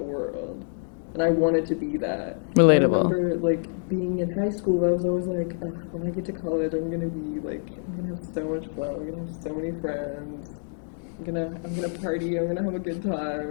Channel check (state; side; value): silent; right; digital silence